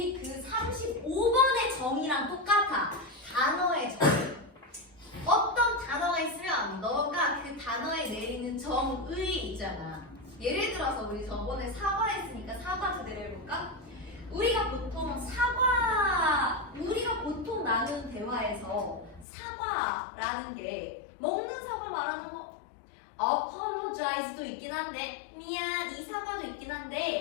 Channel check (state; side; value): drops out; right; at 19.2 s